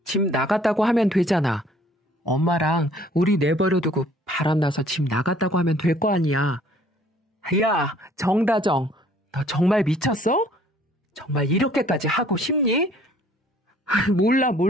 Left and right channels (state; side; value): normal; both; correlation 0.57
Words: 집 나갔다고 하면 되잖아. 엄마랑 우리 내버려두고 바람나서 집 나갔다고 하면 될 거 아니야. 야, 정다정, 너 정말 미쳤어? 정말 이렇게까지 하고 싶니?